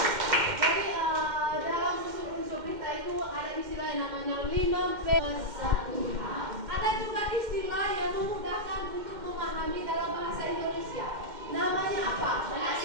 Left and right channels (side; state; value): left; late; 2.1 ms